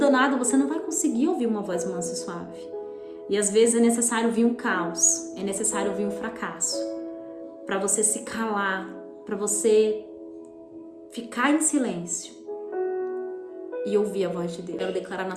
você não vai conseguir ouvir uma voz mansa e suave. E às vezes é necessário vir um caos, é necessário vir um fracasso, para você se calar, para você ficar em silêncio e ouvir a voz de Deus. Quero declarar na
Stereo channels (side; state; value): both; identical; correlation 1.00